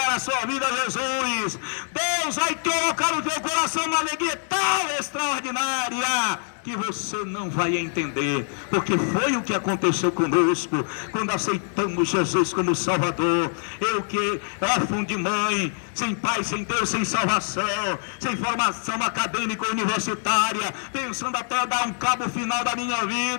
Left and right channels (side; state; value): right; silent; digital silence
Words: a sua vida a Jesus, Deus vai colocar no teu coração uma alegria tão extraordinária que você não vai entender, porque foi o que aconteceu conosco quando aceitamos Jesus como Salvador. Eu que órfão de mãe, sem pai, sem Deus, sem salvação, sem formação acadêmica universitária, pensando até dar um cabo final da minha